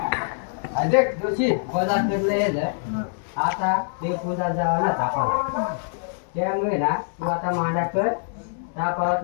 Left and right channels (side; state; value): right; silent; digital silence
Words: देख दोषी बाजार करलं आता ते पूजा जावं ना तापाला त्यामुळे ना तू आता मांडा कर तापावत